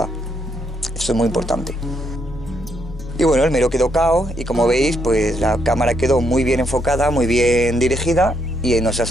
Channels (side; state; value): both; normal; correlation 0.75